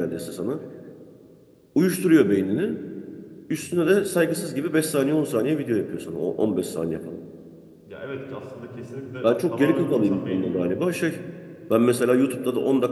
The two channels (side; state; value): both; identical; correlation 1.00